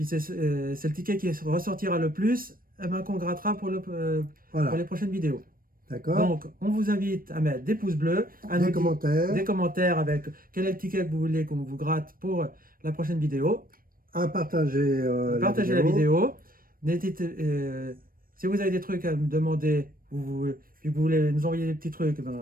c'est le ticket qui ressortira le plus, eh ben, qu'on grattera pour Voilà. les prochaines vidéos. D'accord. Donc, on vous invite à mettre des pouces bleus, à Des nous commentaires. des commentaires avec quel est le ticket que vous voulez qu'on vous gratte pour la prochaine vidéo. À partager, Partagez la vidéo. Si vous avez des trucs à me demander, puis vous voulez nous envoyer des petits trucs,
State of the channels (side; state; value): left; late; 0.41 ms